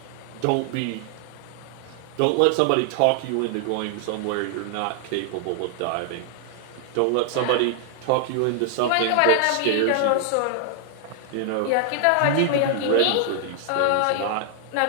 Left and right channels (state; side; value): different; both; correlation 0.00